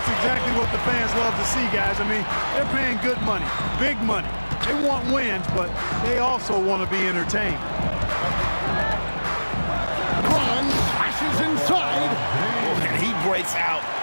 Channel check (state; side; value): inverted; both; correlation -1.00